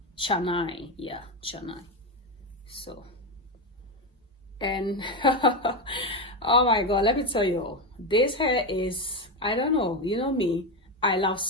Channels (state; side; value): normal; both; correlation 0.13